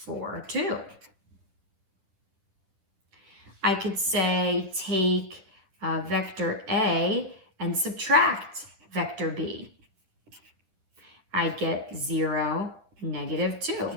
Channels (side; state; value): left; late; 10 ms